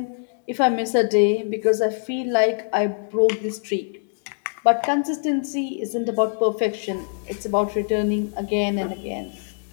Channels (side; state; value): right; silent; digital silence